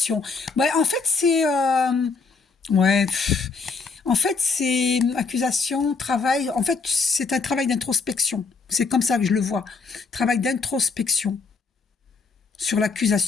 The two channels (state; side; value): quieter; right; 4.6 dB